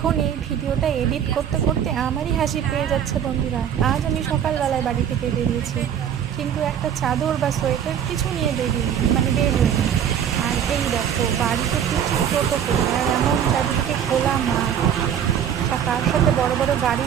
এখন এই ভিডিওটা এডিট করতে করতে আমারই হাসি পেয়ে যাচ্ছে বন্ধুরা। আজ আমি সকালবেলায় বাড়ি থেকে বেরিয়েছি, কিন্তু একটা চাদর বা সোয়েটার কিছু নিয়ে বের হইনি। আর এই দেখো বাড়িতে ফিরছি টোটো করে, আর এমন চারিদিকে খোলা মাঠ, আর তার সাথে বড় বড়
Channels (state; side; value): quieter; left; 9.0 dB